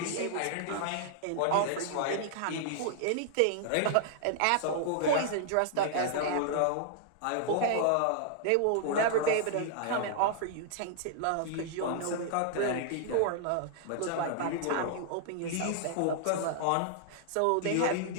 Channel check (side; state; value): both; different; correlation -0.01